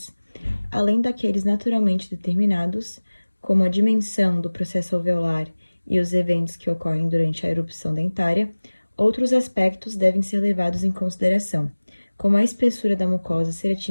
além daqueles naturalmente determinados, como a dimensão do processo alveolar e os eventos que ocorrem durante a erupção dentária, outros aspectos devem ser levados em consideração, como a espessura da mucosa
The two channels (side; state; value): both; inverted; correlation -1.00